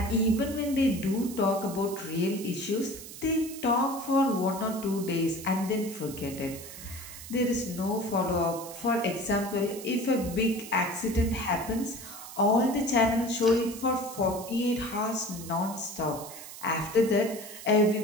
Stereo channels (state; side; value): noise; right; hiss, 13 dB below the sound